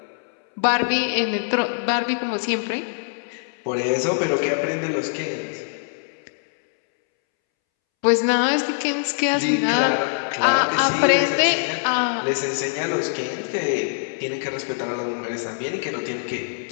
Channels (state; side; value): silent; right; 63 dB below the other